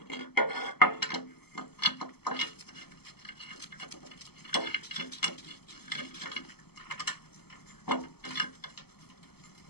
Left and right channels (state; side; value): late; right; 0.96 ms